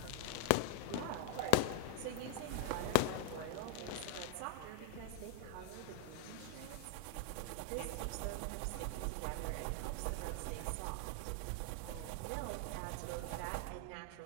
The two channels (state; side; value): different; both; correlation 0.00